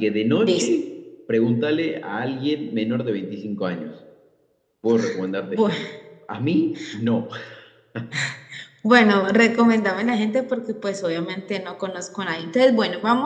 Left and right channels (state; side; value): identical; both; correlation 1.00